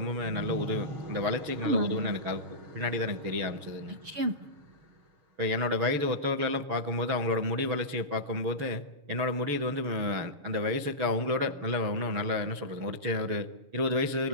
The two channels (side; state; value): left; late; 6.8 ms